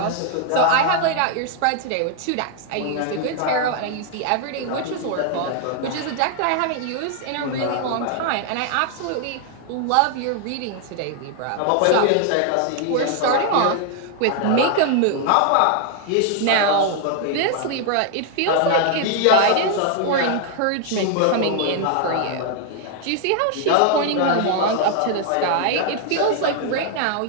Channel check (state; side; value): different; both; correlation 0.00